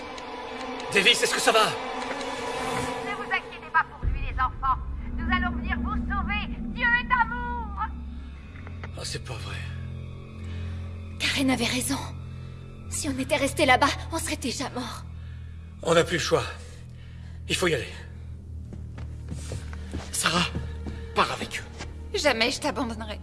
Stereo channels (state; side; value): identical; both; correlation 1.00